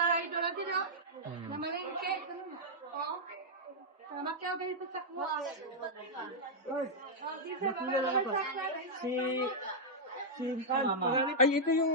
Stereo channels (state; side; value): normal; both; correlation -0.07